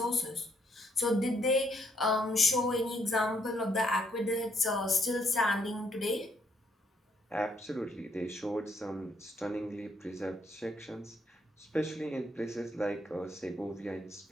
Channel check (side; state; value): both; normal; correlation 0.72